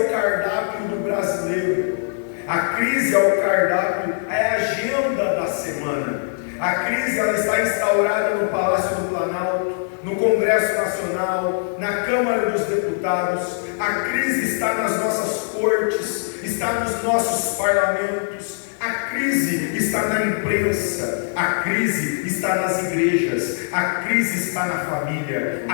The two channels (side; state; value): right; silent; digital silence